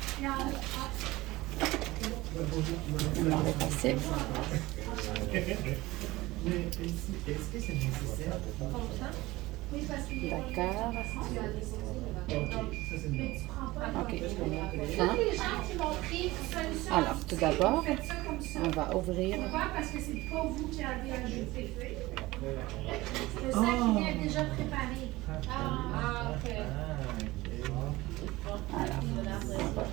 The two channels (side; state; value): left; quieter; 19.4 dB